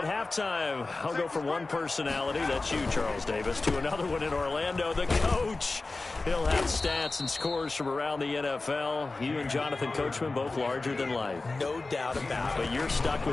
halftime, I'll go from one personality, that's you, Charles Davis, to another one in Orlando, the coach. He'll have stats and scores from around the NFL. You and Jonathan Coachman, both larger than life. No doubt about it. But you're stuck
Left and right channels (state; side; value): quieter; right; 3.4 dB